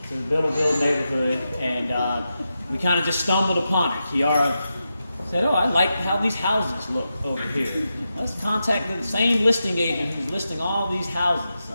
to the Biddleville neighborhood, and we kind of just stumbled upon it. Kiara said, "Oh, I like how these houses look over here. Let's contact the same listing agent who's listing all these houses."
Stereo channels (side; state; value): both; inverted; correlation -0.89